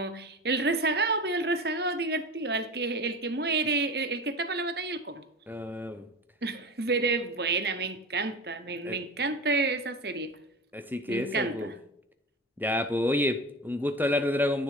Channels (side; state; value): both; normal; correlation 0.31